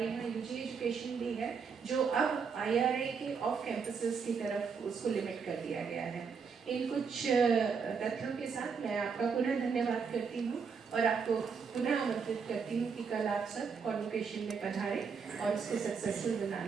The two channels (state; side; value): quieter; left; 5.8 dB